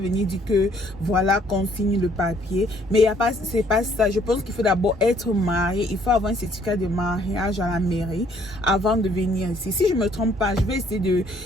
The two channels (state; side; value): normal; both; correlation 0.63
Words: dire que voilà qu'on signe le papier. Mais c'est pas ça. Je pense qu'il faut d'abord être marié. Il faut avoir un certificat de mariage à la mairie avant de venir ici. Si je me trompe pas, je vais essayer de...